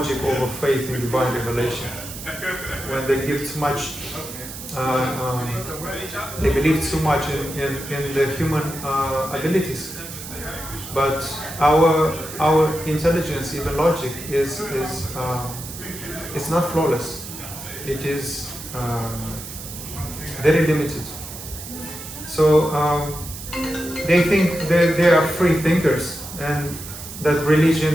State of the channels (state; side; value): noise; right; hiss, 11 dB below the sound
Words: over faith in divine revelation. When they give too much, they believe too much in the human abilities. But our intelligence, even logic, is it's not flawless. It is very limited. So they think they are free thinkers, and that